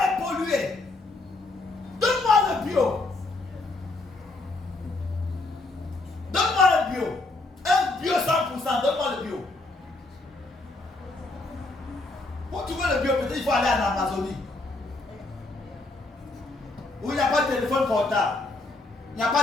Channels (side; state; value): right; quieter; 3.1 dB